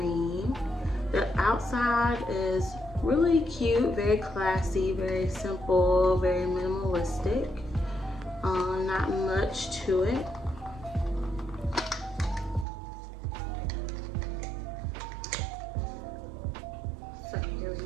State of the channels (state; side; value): drops out; left; at 12.7 s